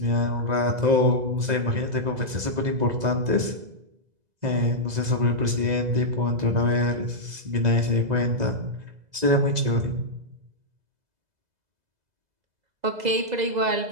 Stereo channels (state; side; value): late; left; 2.0 ms